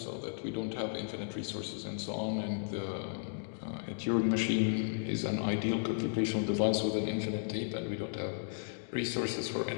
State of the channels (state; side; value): silent; right; digital silence